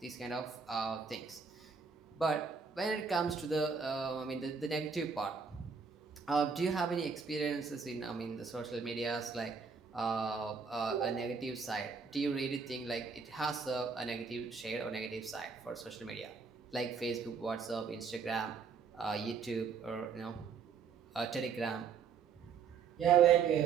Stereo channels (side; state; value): left; quieter; 5.7 dB